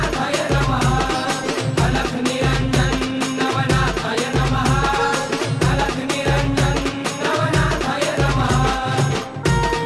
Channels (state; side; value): identical; both; correlation 1.00